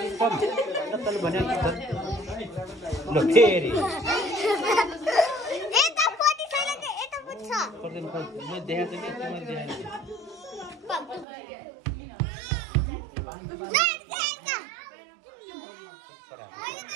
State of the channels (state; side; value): drops out; left; at 11.2 s